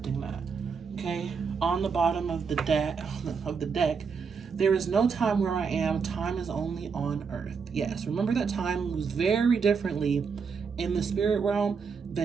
that. Okay, on the bottom of the deck, there is no time where I am. Time is only on Earth. Yes, remember that time moves very differently in the spirit realm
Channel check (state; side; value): quieter; left; 5.7 dB